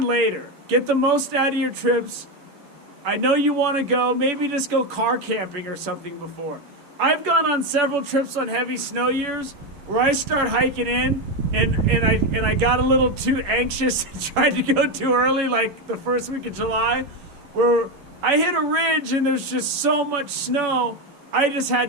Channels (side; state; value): left; late; 11 ms